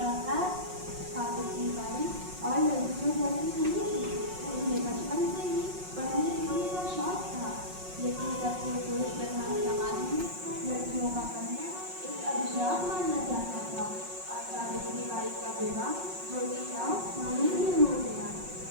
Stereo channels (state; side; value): late; left; 5.5 ms